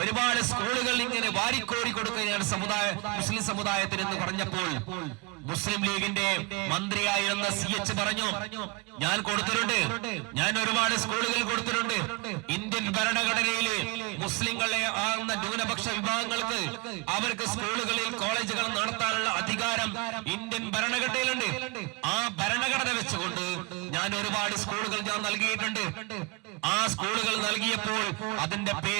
ഒരുപാട് സ്കൂളുകൾ ഇങ്ങനെ വാരിക്കോരി കൊടുക്കുകയാണ് മുസ്ലിം സമുദായത്തിന് എന്ന് പറഞ്ഞപ്പോൾ മുസ്ലിം ലീഗിന്റെ മന്ത്രിയായിരുന്ന CH പറഞ്ഞു, ഞാൻ കൊടുത്തിട്ടുണ്ട്, ഞാൻ ഒരുപാട് സ്കൂളുകൾ കൊടുത്തിട്ടുണ്ട്. ഇന്ത്യൻ ഭരണഘടനയില് മുസ്ലിങ്ങളെ ആകുന്ന ന്യൂനപക്ഷ വിഭാഗങ്ങൾക്ക് അവർക്ക് സ്കൂളുകളിൽ കോളേജുകൾ നടത്താനുള്ള അധികാരം ഇന്ത്യൻ ഭരണഘടനയിലുണ്ട്. ആ ഭരണഘടന വെച്ചുകൊണ്ട് ഞാൻ ഒരുപാട് സ്കൂളുകൾ ഞാൻ നൽകിയിട്ടുണ്ട്. ആ സ്കൂളുകൾ നൽകിയപ്പോൾ അതിന്റെ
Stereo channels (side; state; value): left; quieter; 25.5 dB